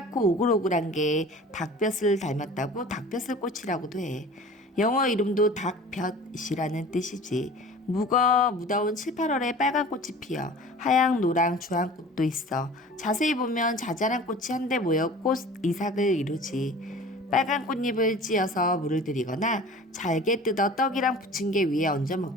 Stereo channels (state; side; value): normal; both; correlation 0.42